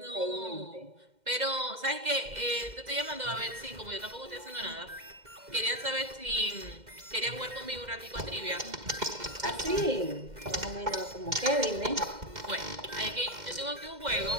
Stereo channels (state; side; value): late; left; 2.1 ms